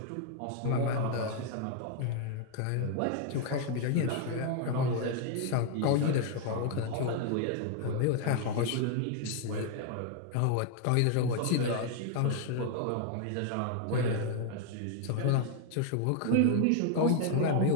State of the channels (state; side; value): different; both; correlation 0.00